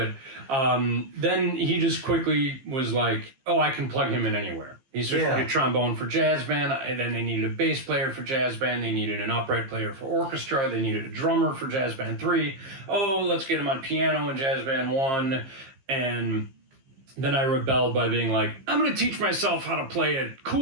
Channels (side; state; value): left; late; 15 ms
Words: then he just quickly was like, "Oh, I can plug him in anywhere." He switched to trombone for jazz band, and then they needed a bass player for jazz band. They needed an upright player for orchestra. They needed a drummer for jazz band 3. Oh, let's get him on piano in jazz band 1. And then I rebelled by being like, "I'm going to teach myself how to play a